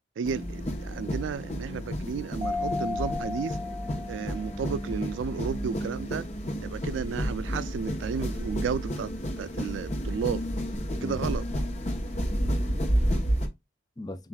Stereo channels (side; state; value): both; normal; correlation 0.70